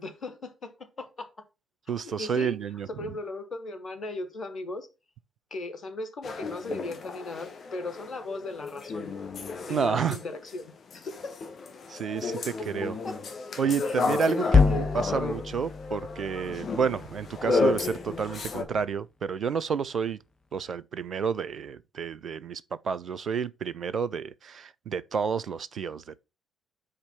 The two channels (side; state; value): both; normal; correlation 0.71